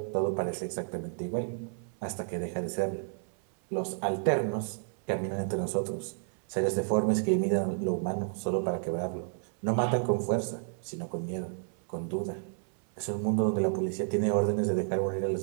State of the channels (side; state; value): left; silent; 57 dB below the other